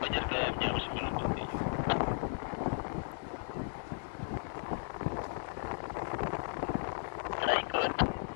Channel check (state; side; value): silent; right; digital silence